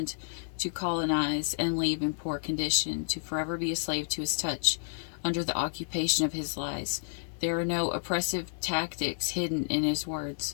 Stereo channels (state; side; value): silent; right; 57 dB below the other